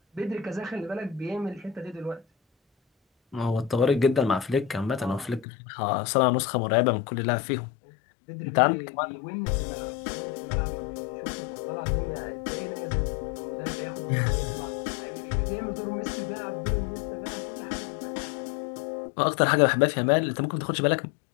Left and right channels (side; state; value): right; drops out; at 5.5 s